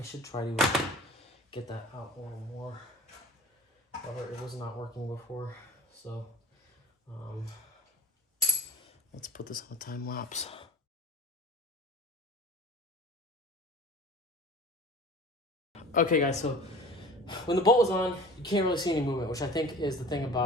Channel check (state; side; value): normal; both; correlation 0.39